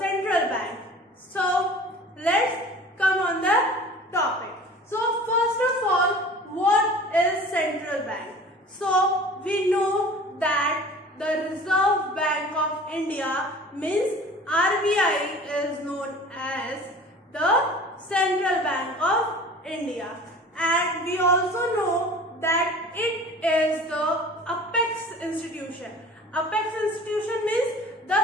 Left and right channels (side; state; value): both; normal; correlation 0.43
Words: bank. So let's come on the topic. So first of all, what is central bank? So we know that the Reserve Bank of India means RBI is known as the Central Bank of India, and we also know that it is the apex institution. Apex institution means